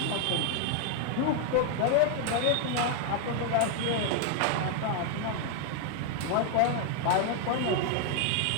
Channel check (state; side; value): different; both; correlation 0.00